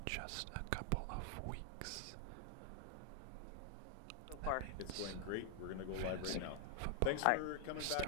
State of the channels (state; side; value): different; both; correlation 0.00